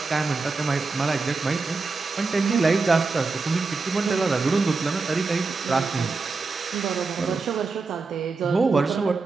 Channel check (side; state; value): left; quieter; 4.1 dB